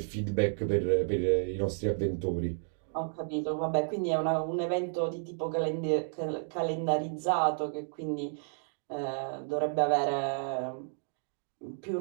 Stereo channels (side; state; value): left; silent; digital silence